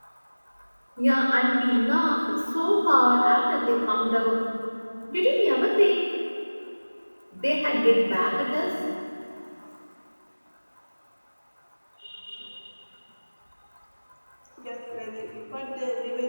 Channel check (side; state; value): both; inverted; correlation -1.00